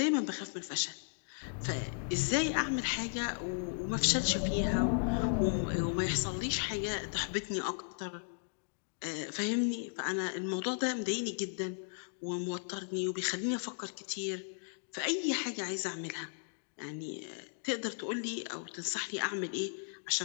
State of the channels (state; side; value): silent; right; digital silence